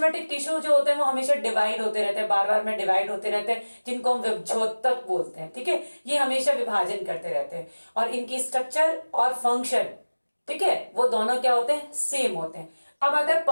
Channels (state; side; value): inverted; both; correlation -1.00